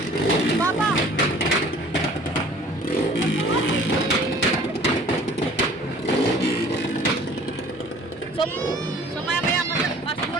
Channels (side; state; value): left; noise; hum, 30 dB below the sound